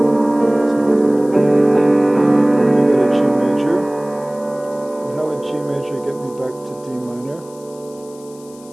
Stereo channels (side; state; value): left; noise; hiss, 24 dB below the sound